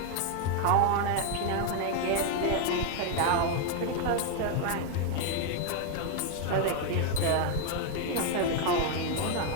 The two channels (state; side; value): different; both; correlation 0.00